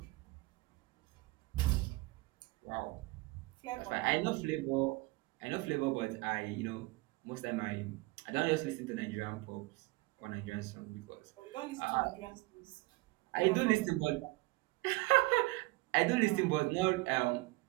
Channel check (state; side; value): quieter; left; 22.5 dB